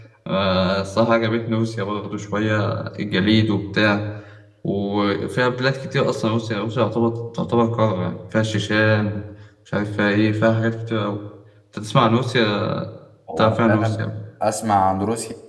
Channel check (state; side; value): identical; both; correlation 1.00